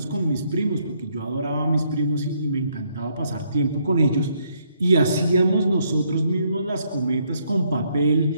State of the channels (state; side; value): inverted; both; correlation -0.71